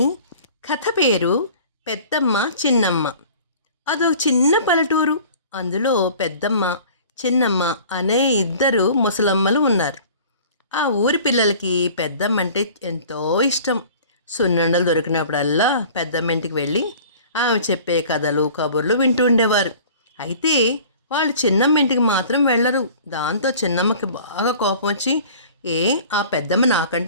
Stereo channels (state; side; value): inverted; both; correlation -0.46